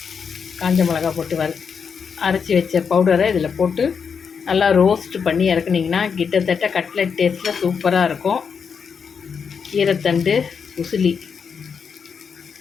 காஞ்ச மிளகா போட்டு அரைச்சி வச்ச பவுடரை இதில் போட்டு நல்லா ரோஸ்ட் பண்ணி இறக்குனிங்கன்னா கிட்டத்தட்ட கட்லெட் டேஸ்ட்டில் சூப்பராக இருக்கும். கீரைத்தண்டு உசிலி,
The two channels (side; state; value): right; quieter; 6.3 dB